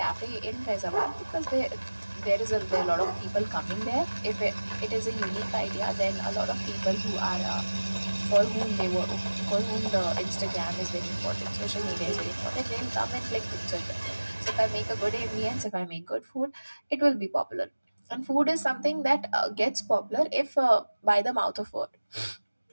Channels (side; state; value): both; inverted; correlation -1.00